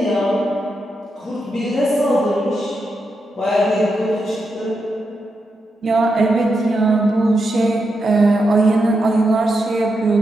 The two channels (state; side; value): normal; both; correlation 0.85